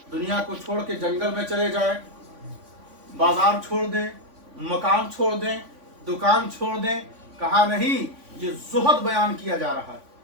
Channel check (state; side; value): late; left; 3.5 ms